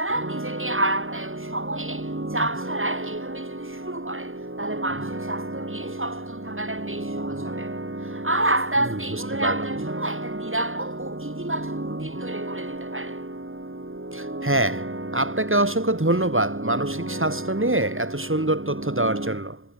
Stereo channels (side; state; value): left; late; 0.59 ms